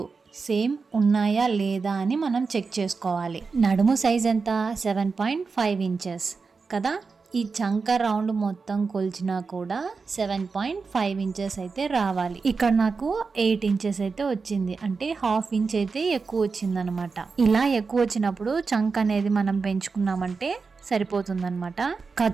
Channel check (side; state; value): left; quieter; 4.7 dB